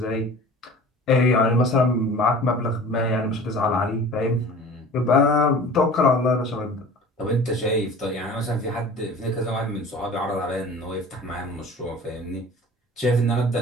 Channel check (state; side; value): normal; both; correlation 0.42